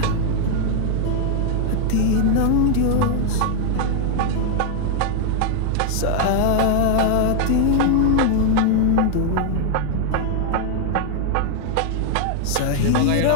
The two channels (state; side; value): different; both; correlation 0.00